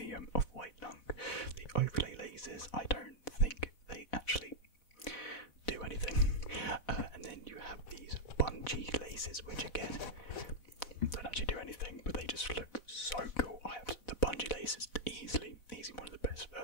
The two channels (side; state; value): right; late; 4.1 ms